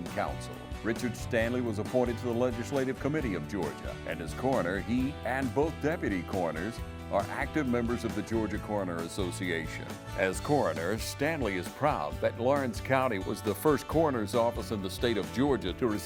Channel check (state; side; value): identical; both; correlation 1.00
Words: Council. Richard Stanley was appointed to the Legislative Committee of Georgia, and as coroner, he and both deputy coroners are active members of the Georgia Coroner Association. As coroner, Stanley is proud that Lawrence County was the first coroner's office in the state of Georgia to